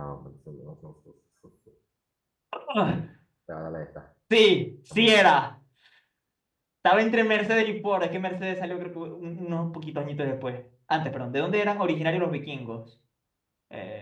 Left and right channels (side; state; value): both; identical; correlation 1.00